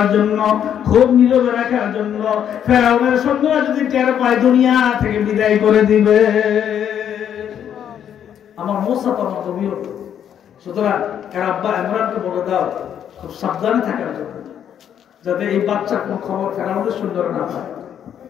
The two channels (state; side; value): quieter; right; 9.3 dB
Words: জন্য, খুব নীরবে রাখার জন্য। ফেরাউনের সৈন্যরা যদি টের পায় দুনিয়া থেকে বিদায় করে দিবে। আমার মুসা তো আমার নবী, সুতরাং এর আব্বা ইমরানকে বলে দাও খুব সাবধানে থাকার জন্য, যাতে এই বাচ্চার কোন খবর ফেরাউনের সৈন্যরা না পায়।